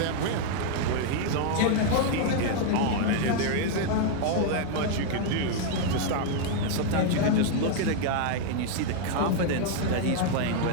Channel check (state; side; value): different; both; correlation 0.00